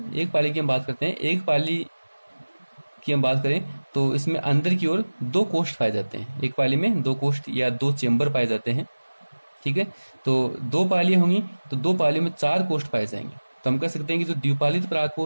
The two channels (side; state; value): both; inverted; correlation -1.00